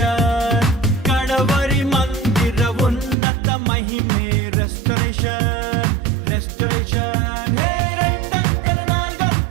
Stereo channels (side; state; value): left; drops out; at 3.2 s